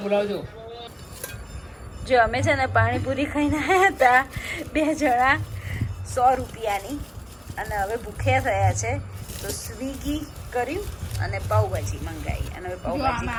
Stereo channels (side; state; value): both; identical; correlation 1.00